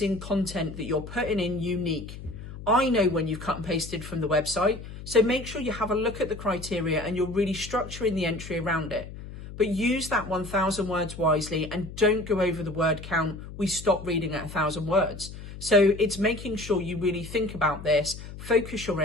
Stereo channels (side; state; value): left; noise; hum, 12 dB below the sound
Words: content that you're putting in unique. I know when you've cut and pasted from the website, so make sure you have a look at the criteria and you're really structuring the entry around it. But use that 1,000 words wisely and don't go over the word count. We stop reading at 1,000 words. So it's making sure you really think about this, focus your